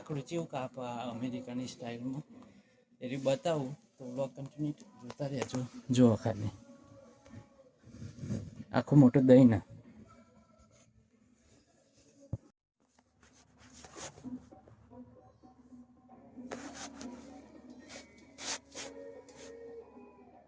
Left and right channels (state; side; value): identical; both; correlation 1.00